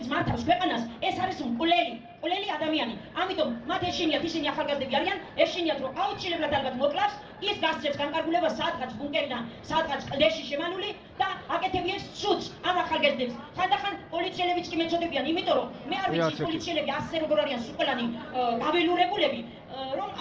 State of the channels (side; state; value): both; identical; correlation 1.00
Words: მართავს ქვეყანას, ეს არის მკვლელი ადამიანი. ამიტომ მათ ეშინიათ, ისინი ახალგაზრდები არიან, ეშინიათ რომ აუცილებლად ალბათ მოკლავს, ის გასცემს განკარგულებას სადღაც ბუნკერიდან, სადღაც კლდეში შემანული და აკეთებიეს სუდს ამ ახალგაზრდებს. ხანდახან პოლიციელებიც კი მეწოდებიან, იმიტომ რომ მე არ ვიცი ის პოლიციელები ასე როგორ არიან სუყელანი გაველურებულები, რომ